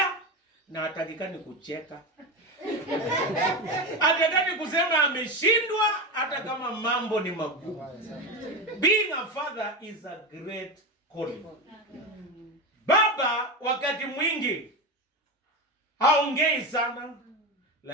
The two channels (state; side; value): normal; both; correlation 0.19